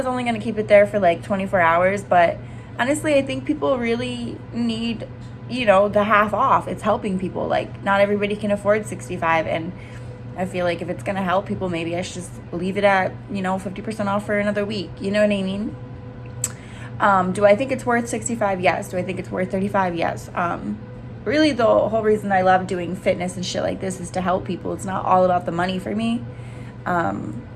only going to keep it there for like 24 hours, but honestly, I think people really need, you know, the half off. It's helping people. Like not everybody can afford $65, and I feel like if it's going to help people, maybe I should just leave it at, you know, 50% off for another week. You know what I mean? Do I think it's worth $65? Yes. Do I think it's worth $35? Yes. Really the whole reason I love doing fitness and shit like this is to help people. It's not all about the money for me.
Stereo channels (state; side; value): identical; both; correlation 1.00